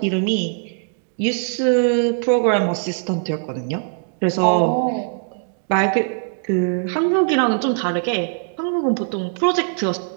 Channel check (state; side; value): silent; left; 65 dB below the other